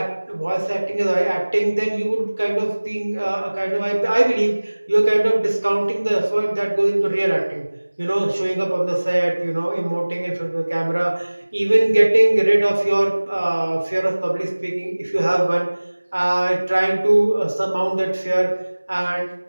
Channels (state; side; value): inverted; both; correlation -1.00